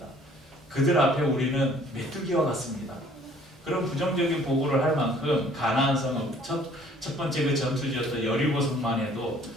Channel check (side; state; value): both; normal; correlation 0.56